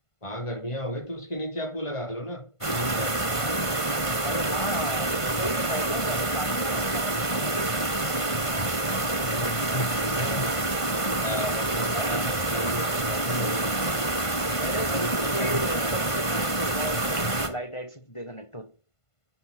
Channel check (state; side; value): late; right; 1.5 ms